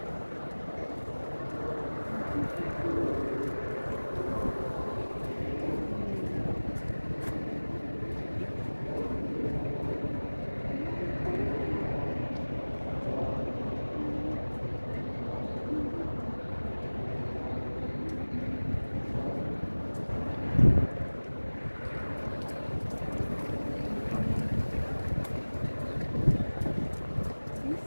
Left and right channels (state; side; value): inverted; both; correlation -1.00